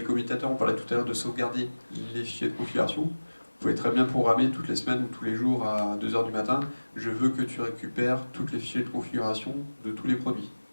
commutateurs, on parlait tout à l'heure de sauvegarder les fichiers de configuration. Vous pouvez très bien programmer toutes les semaines ou tous les jours à 2 h du matin. Je veux que tu récupères toutes les fichiers de configuration de tous les produits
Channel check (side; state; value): both; inverted; correlation -1.00